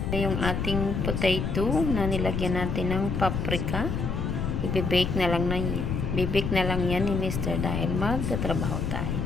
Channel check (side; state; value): left; noise; rumble, 1 dB below the sound